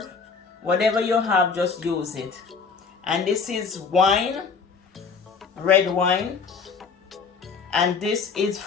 Whatever you have, just use it. And this is wine, red wine. And this is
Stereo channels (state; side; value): quieter; right; 5.4 dB